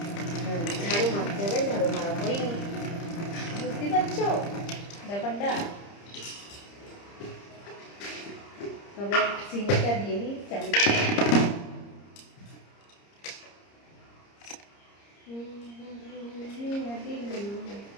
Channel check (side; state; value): right; late; 30 ms